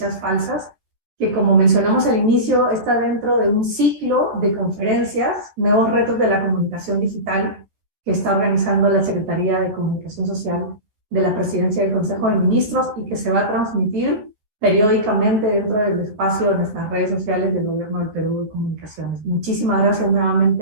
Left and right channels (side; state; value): left; late; 14 ms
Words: falsas, que como mencionamos al inicio, está dentro de un ciclo de conferencias, Nuevos Retos de la Comunicación Digital, que está organizando la Secretaría de Comunicación Social de la Presidencia del Consejo de Ministros y que se va a transmitir periódicamente dentro del espacio de nuestras redes sociales del Gobierno del Perú de Comunicaciones. Muchísimas gracias